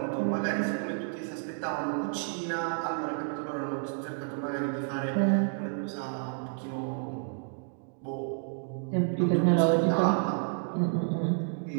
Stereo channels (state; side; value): silent; left; 58 dB below the other